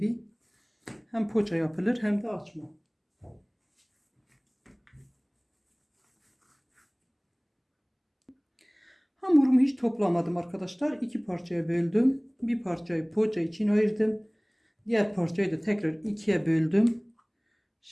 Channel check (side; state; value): both; identical; correlation 1.00